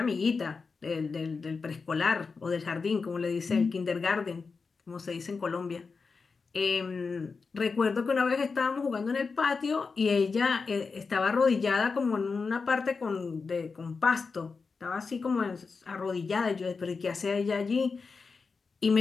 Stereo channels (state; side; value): quieter; right; 4.7 dB